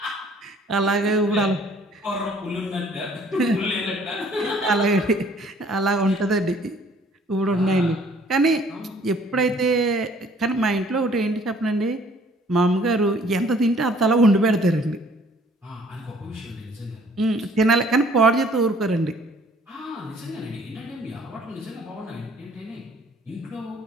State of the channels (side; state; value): both; normal; correlation 0.58